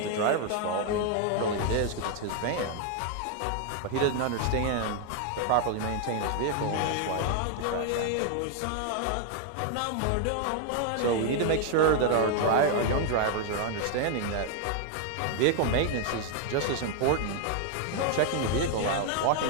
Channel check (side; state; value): both; different; correlation 0.00